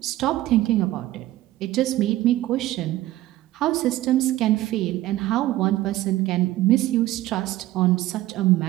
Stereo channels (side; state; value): left; quieter; 15.7 dB